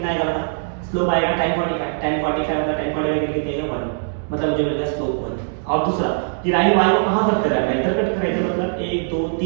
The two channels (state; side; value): silent; left; 65 dB below the other